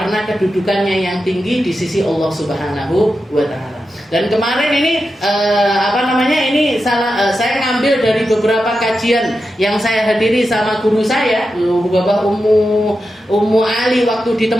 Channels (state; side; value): normal; both; correlation 0.90